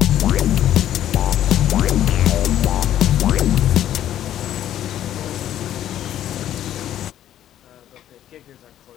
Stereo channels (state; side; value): quieter; right; 11.6 dB